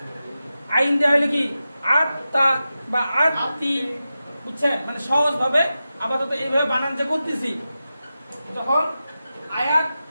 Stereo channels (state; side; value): inverted; both; correlation -0.92